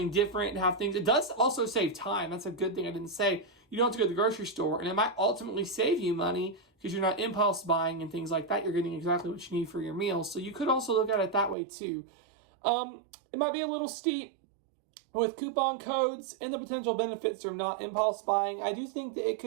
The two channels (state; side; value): drops out; left; at 11.6 s